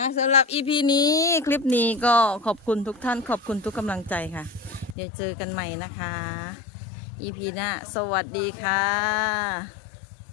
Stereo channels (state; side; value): drops out; right; at 5.0 s